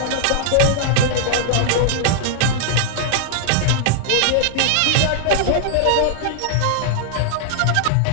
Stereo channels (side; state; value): both; different; correlation -0.01